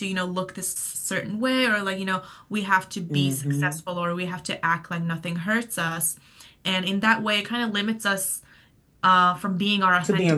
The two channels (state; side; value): identical; both; correlation 1.00